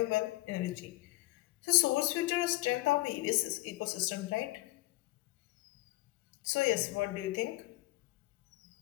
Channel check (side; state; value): right; quieter; 19.6 dB